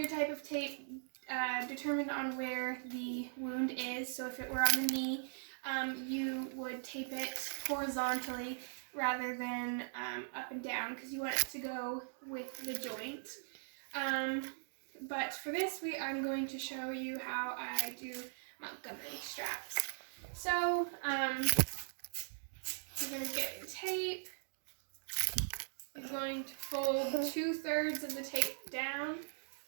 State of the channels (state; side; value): silent; left; digital silence